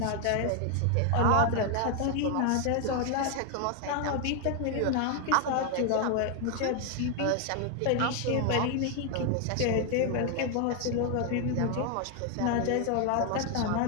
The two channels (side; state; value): both; different; correlation 0.01